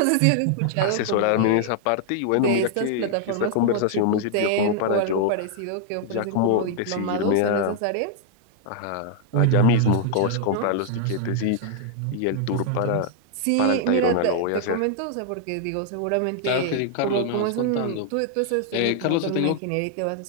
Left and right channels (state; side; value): different; both; correlation -0.01